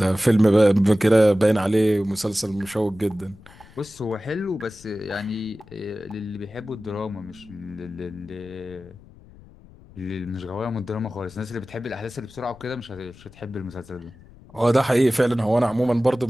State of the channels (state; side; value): noise; left; rumble, 23 dB below the sound